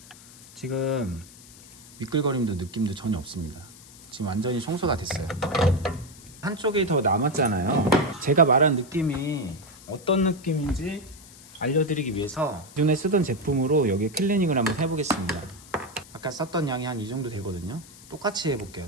지금 미끌거림도 느낌도 전혀 없습니다. 지금 완전히 청소가 됐어요. 한쪽이 더 남았잖아요. 제가 말한 느낌이 어떤 느낌인지 알려드리기 위해서 기존에 쓰던 제품으로 여기 클리닝을 한번 해보겠습니다. 아까 썼던 양이 한 이 정도 되거든요. 똑같이 해볼게요.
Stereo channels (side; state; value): left; noise; hiss, 21 dB below the sound